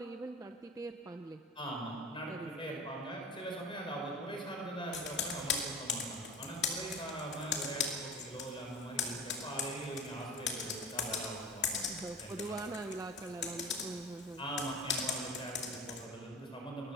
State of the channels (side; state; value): both; normal; correlation 0.36